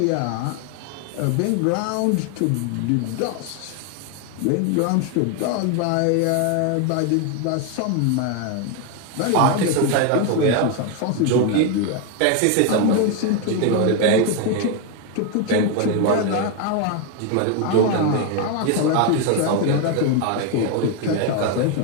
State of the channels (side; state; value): both; different; correlation 0.01